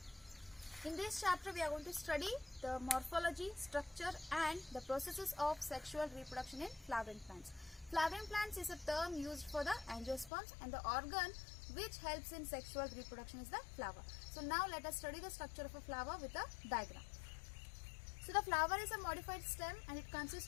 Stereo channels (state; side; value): drops out; right; at 10.3 s